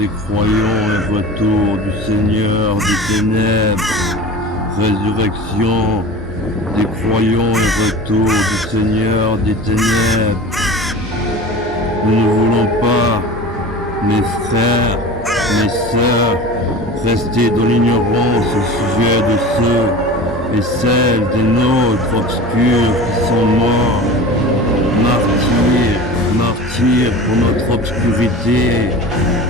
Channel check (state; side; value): normal; both; correlation 0.35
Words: croyants et retour du Seigneur des ténèbres. Résurrection des croyants et retour du Seigneur des ténèbres. Nous ne voulons pas, mes frères, mes sœurs, rester dans l'ignorance au sujet de ceux et celles des nôtres obscurs qui sont morts, martyrs pour notre obscurité.